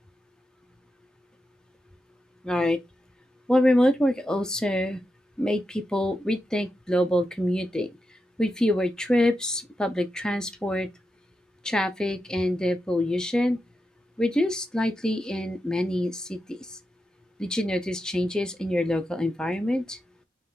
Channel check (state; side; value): normal; both; correlation 0.88